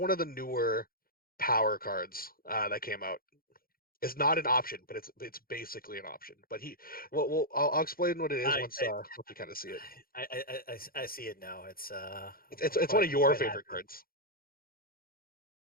newer power cards that came out. It's not an option, but it's basically an option. But I'll explain what it is I once you kind of see it. I see it now. It's It's one of I'm your quite favorite happy. cards.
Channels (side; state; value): right; late; 0.42 ms